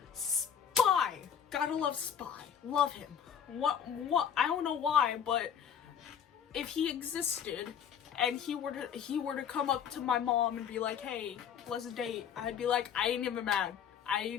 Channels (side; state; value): right; quieter; 8.3 dB